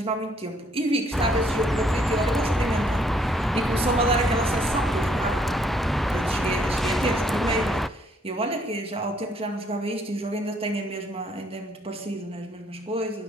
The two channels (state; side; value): normal; both; correlation 0.67